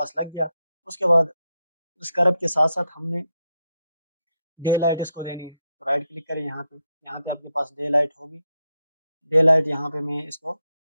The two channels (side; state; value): both; inverted; correlation -0.83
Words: लग गया। उसके बाद उस कर्व के साथ साथ हमने डे लाइट इसको देनी है, तो राइट क्लिक करें यहाँ पे, यहाँ पे आपके पास डे लाइट होगी। डे लाइट यहाँ पे मैं इसको